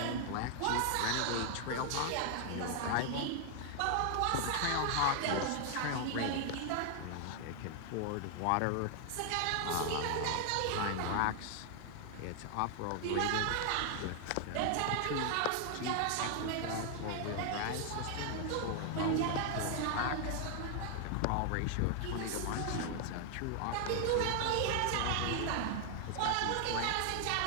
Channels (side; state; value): both; different; correlation 0.00